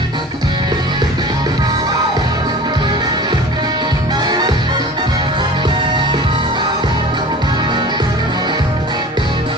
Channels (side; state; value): both; normal; correlation 0.40